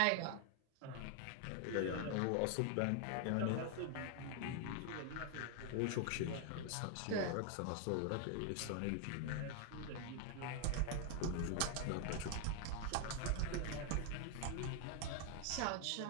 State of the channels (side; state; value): both; different; correlation 0.00